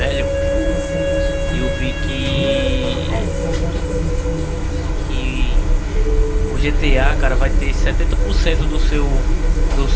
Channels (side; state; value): both; identical; correlation 1.00